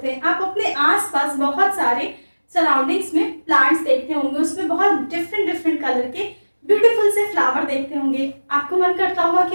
हैं. आप अपने आसपास बहुत सारे सराउंडिंग्स में प्लांट्स देखते होंगे, उसमें बहुत डिफरेंट डिफरेंट कलर के ब्यूटीफुल से फ्लावर देखते होंगे. आपको मन करता होगा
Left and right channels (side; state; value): both; inverted; correlation -1.00